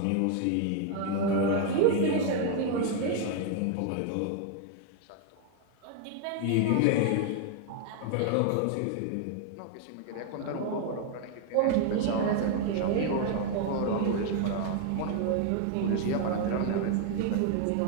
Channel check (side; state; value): both; different; correlation 0.00